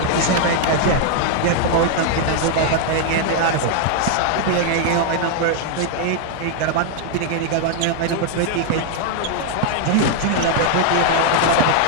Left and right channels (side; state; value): both; different; correlation 0.00